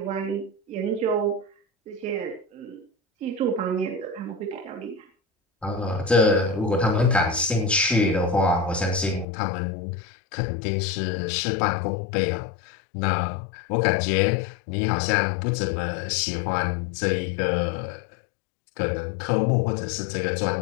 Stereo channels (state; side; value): drops out; right; at 9.2 s